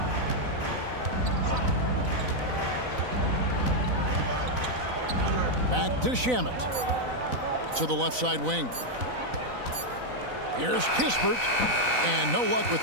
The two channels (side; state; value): left; late; 4.0 ms